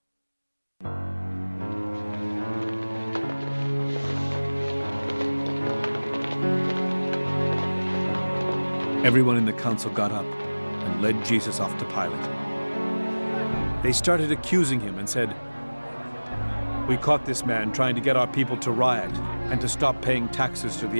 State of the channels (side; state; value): both; inverted; correlation -1.00